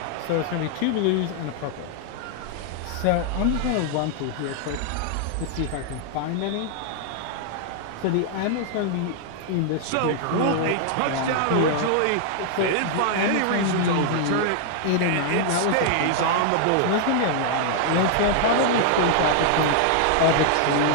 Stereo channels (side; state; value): both; different; correlation 0.00